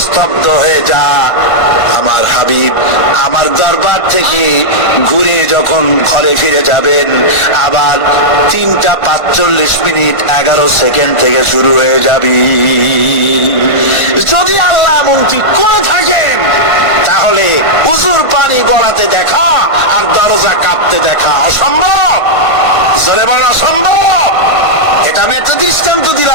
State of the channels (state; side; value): late; right; 1.5 ms